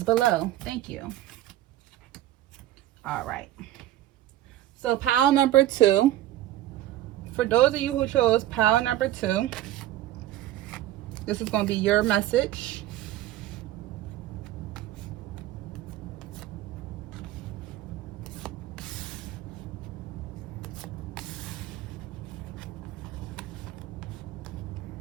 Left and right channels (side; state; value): left; quieter; 13.8 dB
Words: Thank you. All right. So pile number 2, for those of you who chose pile number 2, this is going to be your message.